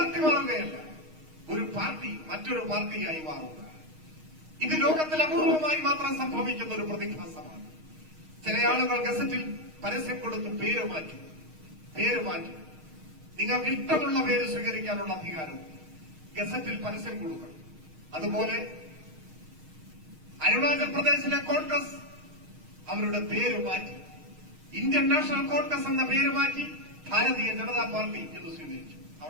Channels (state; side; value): late; left; 6.4 ms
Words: മാറുകയല്ല, ഒരു പാർട്ടി മറ്റൊരു പാർട്ടിയായി മാറുക. ഇത് ലോകത്തിൽ അപൂർവമായി മാത്രം സംഭവിക്കുന്ന ഒരു പ്രതിഭാസമാണ്. ചില ആളുകൾ ഗസറ്റിൽ പരസ്യം കൊടുത്ത് പേര് മാറ്റും. നിങ്ങൾക്ക് ഇഷ്ടമുള്ള പേര് സ്വീകരിക്കാനുള്ള അധികാരവും ഗസറ്റിൽ പരസ്യം കൊടുക്കണം. അതുപോലെ അരുണാചൽ പ്രദേശിലെ കോൺഗ്രസ് അവരുടെ പേര് മാറ്റി ഇന്ത്യൻ നാഷണൽ കോൺഗ്രസ് എന്ന പേര് മാറ്റി ഭാരതീയ ജനതാ പാർട്ടി എന്ന് സ്വീകരിച്ചു.